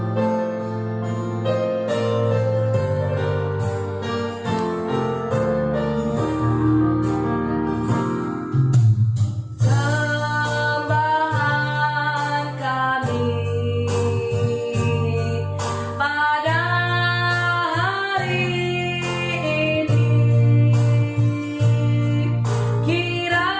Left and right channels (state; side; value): identical; both; correlation 1.00